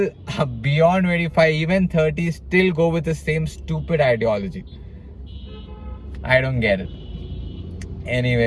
beyond 25, even 30, still go with the same stupid ideology. I don't get it.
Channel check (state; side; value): identical; both; correlation 1.00